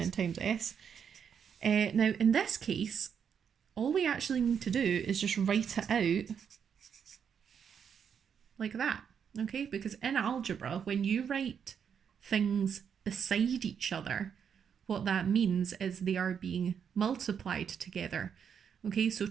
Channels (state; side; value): quieter; left; 7.5 dB